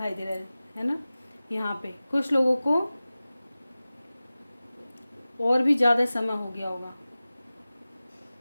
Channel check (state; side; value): inverted; both; correlation -0.97